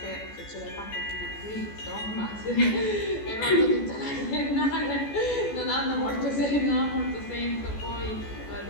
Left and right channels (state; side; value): late; right; 14 ms